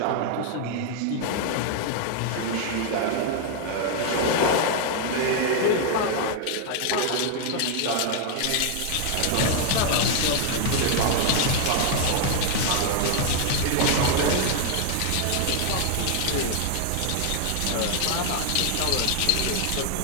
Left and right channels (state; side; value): different; both; correlation 0.00